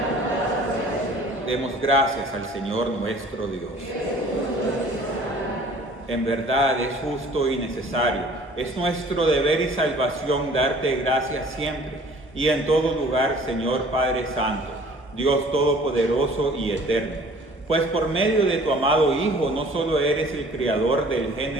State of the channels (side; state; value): both; normal; correlation 0.51